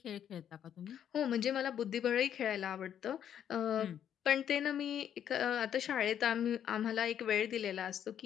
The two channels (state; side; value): quieter; right; 9.5 dB